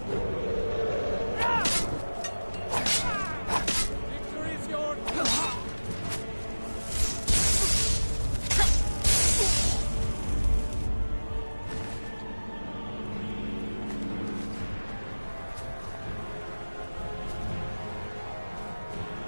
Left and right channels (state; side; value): inverted; both; correlation -1.00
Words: Victory is yours!